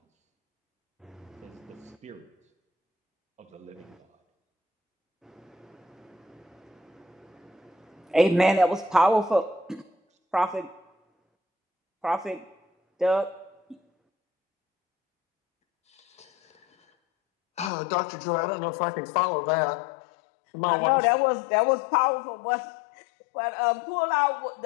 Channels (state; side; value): drops out; right; at 17.7 s